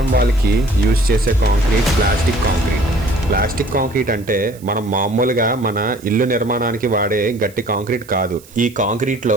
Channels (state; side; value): noise; right; hiss, 24 dB below the sound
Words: వాల్కి యూజ్ చేసే కాంక్రీట్ ప్లాస్టిక్ కాంక్రీట్ అంటే మనం మామూలుగా మన ఇల్లు నిర్మాణానికి వాడే గట్టి కాంక్రీట్ కాదు. ఈ